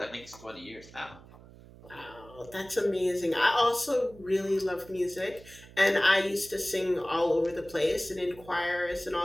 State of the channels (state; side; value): noise; right; hum, 21 dB below the sound